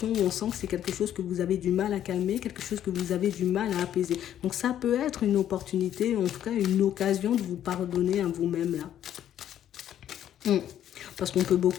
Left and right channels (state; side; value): quieter; right; 10.8 dB